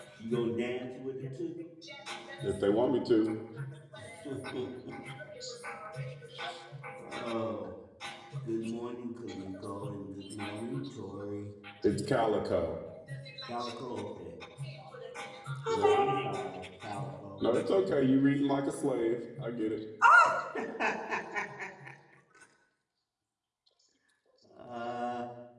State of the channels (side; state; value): both; identical; correlation 1.00